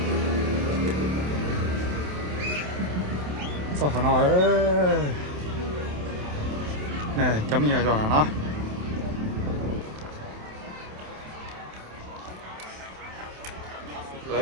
sao phải nói nè chấm nhiều rồi là nó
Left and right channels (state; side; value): late; left; 27 ms